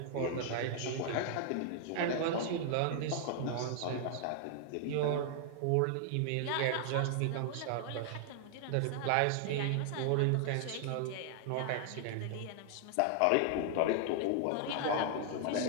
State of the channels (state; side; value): different; both; correlation 0.00